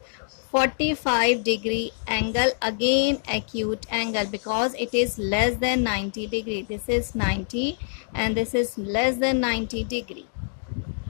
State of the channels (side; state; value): right; silent; digital silence